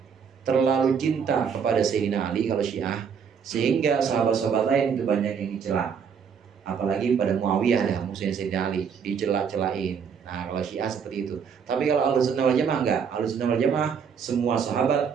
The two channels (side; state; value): left; quieter; 6.8 dB